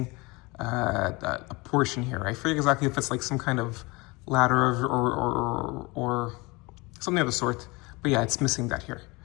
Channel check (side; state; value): right; quieter; 25.0 dB